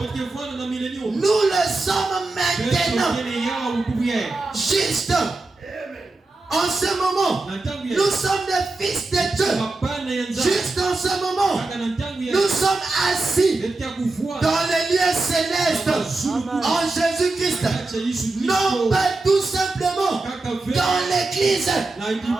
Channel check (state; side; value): quieter; left; 3.2 dB